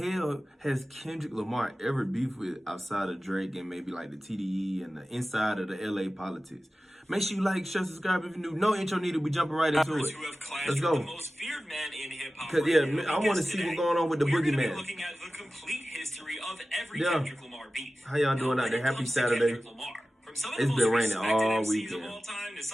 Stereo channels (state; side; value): normal; both; correlation 0.95